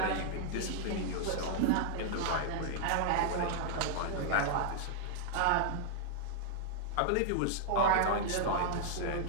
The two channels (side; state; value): both; different; correlation -0.01